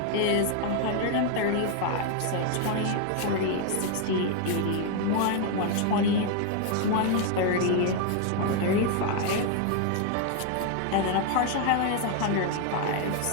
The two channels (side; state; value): both; different; correlation 0.00